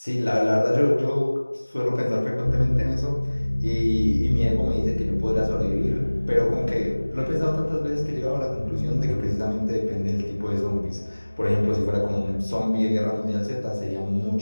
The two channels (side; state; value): both; inverted; correlation -1.00